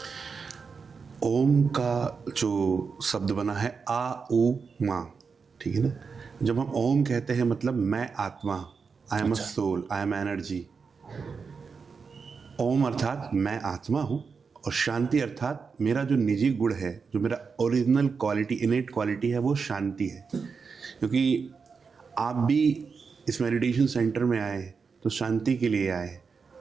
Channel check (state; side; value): quieter; left; 5.3 dB